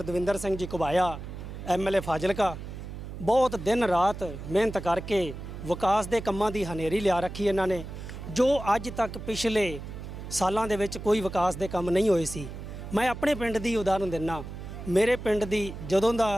ਦਵਿੰਦਰ ਸਿੰਘ ਜੀ ਘੁਬਾਇਆ ਐਮਐਲਏ ਫਾਜ਼ਿਲਕਾ ਬਹੁਤ ਦਿਨ ਰਾਤ ਮਿਹਨਤ ਕਰਕੇ ਵਿਕਾਸ ਦੇ ਕੰਮਾਂ ਦੀ ਹਨੇਰੀ ਲਿਆ ਰੱਖੀ ਇਹਨਾਂ ਨੇ, ਜੋ ਅੱਜ ਤੱਕ ਪਿਛਲੇ ਸਾਲਾਂ ਦੇ ਵਿੱਚ ਕੋਈ ਵਿਕਾਸ ਦੇ ਕੰਮ ਨਹੀਂ ਹੋਏ ਸੀ। ਮੈਂ ਆਪਣੇ ਪਿੰਡ ਦੀ ਉਦਾਹਰਨ ਦਿੰਦਾ। ਮੇਰੇ ਪਿੰਡ ਦੀ ਜਦੋਂ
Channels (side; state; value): right; noise; hum, 10 dB below the sound